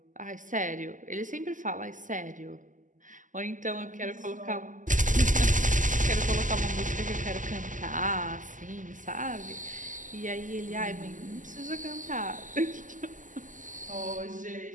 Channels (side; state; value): left; late; 0.37 ms